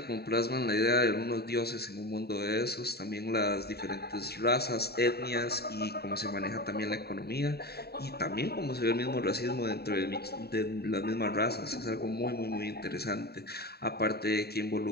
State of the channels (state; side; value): late; right; 0.46 ms